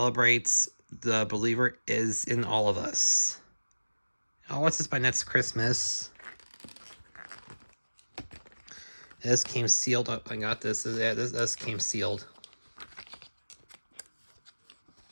the believer is in all of us. I'll watch this by next Christmas. This came sealed. Oh, I got this. Yeah, this came sealed.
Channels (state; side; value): inverted; both; correlation -1.00